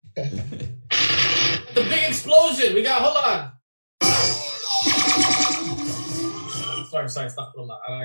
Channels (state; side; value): inverted; both; correlation -1.00